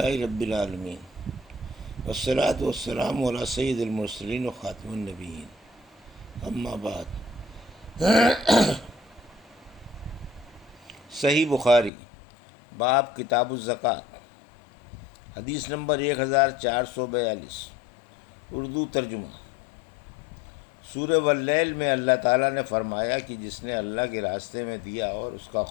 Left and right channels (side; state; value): right; drops out; at 11.9 s